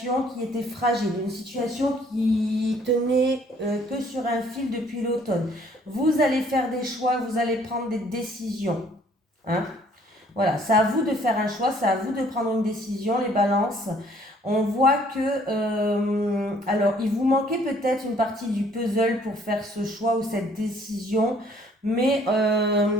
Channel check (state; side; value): normal; both; correlation 0.60